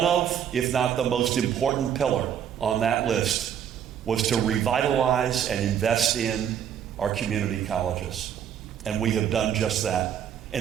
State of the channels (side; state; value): left; quieter; 9.1 dB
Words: of, if not the most important pillar on that list, was to revitalize and invest in our community colleges. And we have done just that.